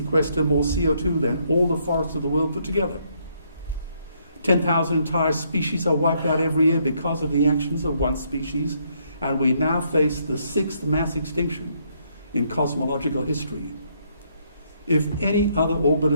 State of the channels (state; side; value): inverted; both; correlation -0.72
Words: more CO2 than all the forests of the world put together. 10,000 entire species are wiped out every year because of the actions of one species, and we now face the 6th mass extinction in cosmological history. If any other